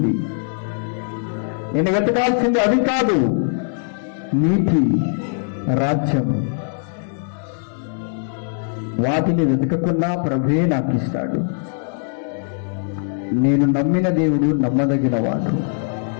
నేను వెతకాల్సింది అది కాదు, నీతి, రాజ్యం. వాటిని వెతకకుండా ప్రభువే నాకు ఇస్తాడు. నేను నమ్మిన దేవుడు నమ్మదగిన వాడు.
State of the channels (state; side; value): silent; right; digital silence